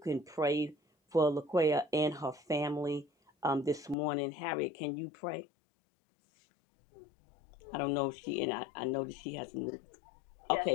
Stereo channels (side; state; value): right; drops out; at 4.0 s